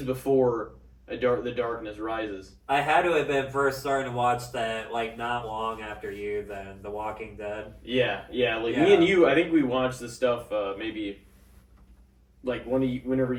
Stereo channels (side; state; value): both; identical; correlation 1.00